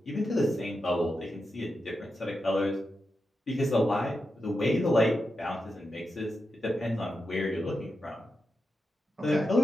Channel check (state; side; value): normal; both; correlation 0.88